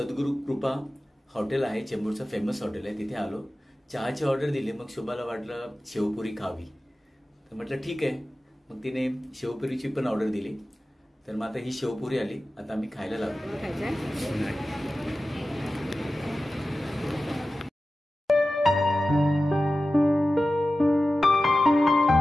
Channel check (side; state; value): both; normal; correlation 0.95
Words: कृपा हॉटेल आहे, चेंबूरचं फेमस हॉटेल आहे, तिथे आलो. चहाची ऑर्डर दिली. मग शोभाला वाटलं शेवपुरी खावी, तर म्हटलं ठीक आहे. मग तिने शेवपुरीची पण ऑर्डर दिली. तर मग आता ही शेवपुरी आली, आता आम्ही खायला लागलो.